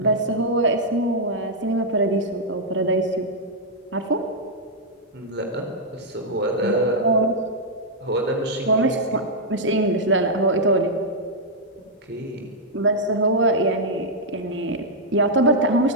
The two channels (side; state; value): both; normal; correlation -0.05